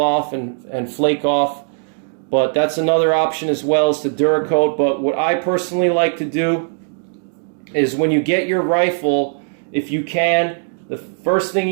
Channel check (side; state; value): left; silent; digital silence